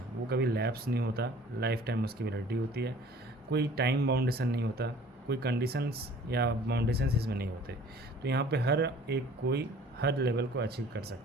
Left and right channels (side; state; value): both; normal; correlation 0.50